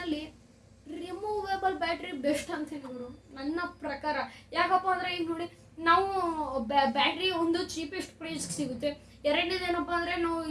ರಿಮೂವೇಬಲ್ ಬ್ಯಾಟ್ರಿ ಬೆಸ್ಟ್ ಅಂತ ಹೇಳಿದ್ರು ನನ್ನ ಪ್ರಕಾರ. ಯಾಕಪ್ಪ ಅಂದರೆ ಈಗ ನೋಡಿ ನಾವು ಬ್ಯಾಟ್ರಿ ಒಂದು ಚೀಪೆಸ್ಟ್ ಪ್ರೈಸ್ಗೆ ಸಿಗುತ್ತೆ. ಎರಡನೇದು ಏನಪ್ಪ ಅಂದರೆ ನಾವು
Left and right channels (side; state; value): both; identical; correlation 1.00